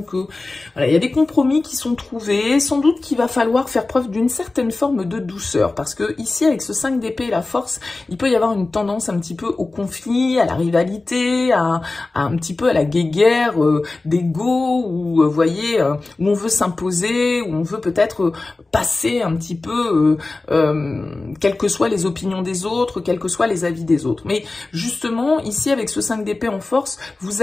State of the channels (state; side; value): quieter; right; 3.3 dB